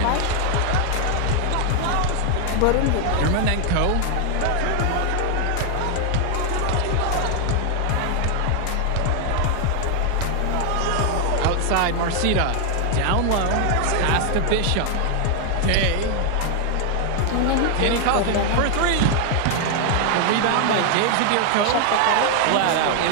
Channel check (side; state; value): both; different; correlation 0.00